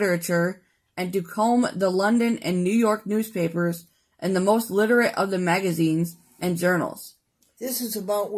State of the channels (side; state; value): both; identical; correlation 1.00